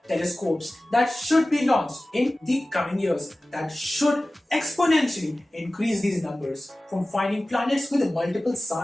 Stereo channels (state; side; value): normal; both; correlation 0.97